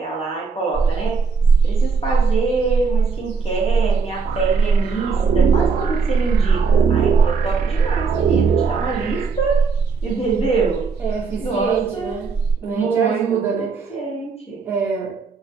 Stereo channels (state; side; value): quieter; left; 5.0 dB